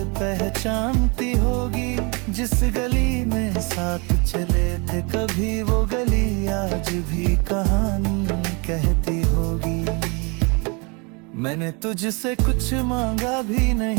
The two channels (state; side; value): quieter; left; 30.8 dB